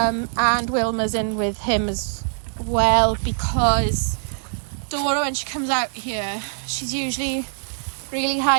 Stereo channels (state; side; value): silent; left; digital silence